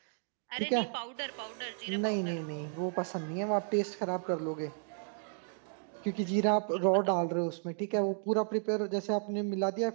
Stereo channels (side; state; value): left; silent; digital silence